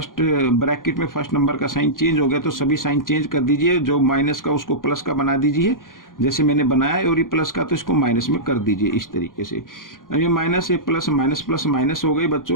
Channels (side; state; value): right; late; 0.90 ms